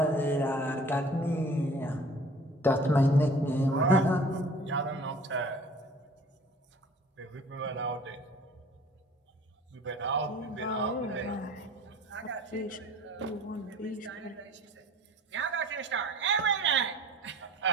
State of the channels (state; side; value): normal; both; correlation 0.48